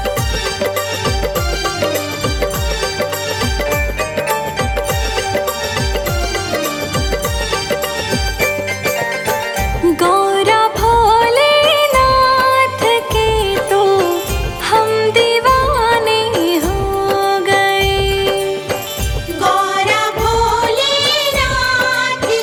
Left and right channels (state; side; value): identical; both; correlation 1.00